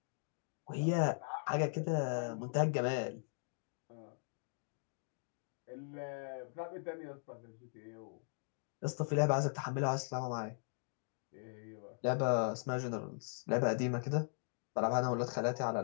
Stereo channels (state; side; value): silent; right; digital silence